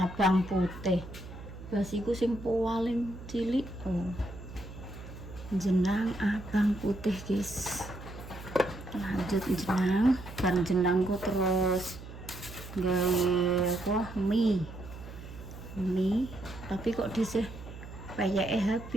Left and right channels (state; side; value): noise; right; hum, 13 dB below the sound